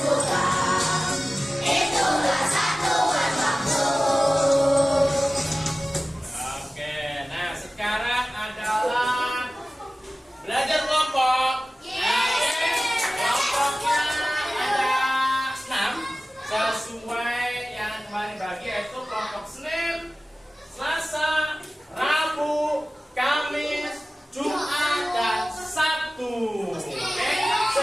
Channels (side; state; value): both; normal; correlation 0.97